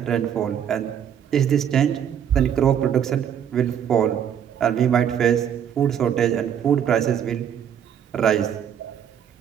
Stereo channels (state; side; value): quieter; left; 8.9 dB